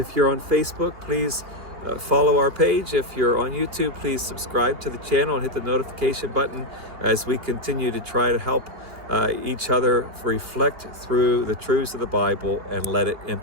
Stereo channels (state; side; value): late; left; 2.7 ms